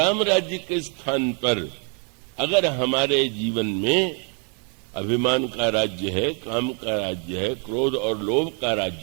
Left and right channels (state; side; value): quieter; left; 39.2 dB